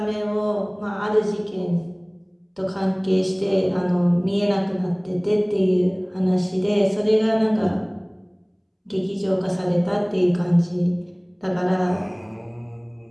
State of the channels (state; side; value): identical; both; correlation 1.00